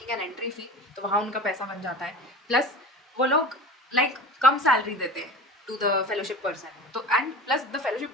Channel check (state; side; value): normal; both; correlation 0.33